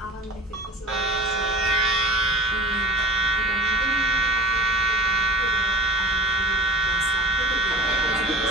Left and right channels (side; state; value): both; normal; correlation 0.40